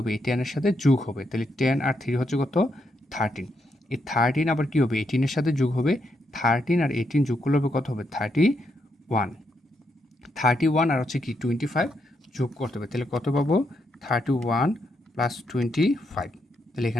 এই 10 এর সাথে যোগ হবে, তাহলে 10 আর 3 হচ্ছে কত 13। এই 13 আবার কী হবে 18 এর সাথে যোগ হবে, 13 আর 18 যোগ করলে হবে কত হবে 31 আর হচ্ছে কি 25 যোগ করতে হবে, তাহলে কত পাবো 31 + 25, তাহলে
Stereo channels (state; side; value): normal; both; correlation 0.79